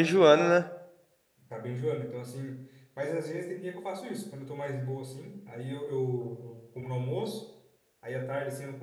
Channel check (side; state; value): both; identical; correlation 1.00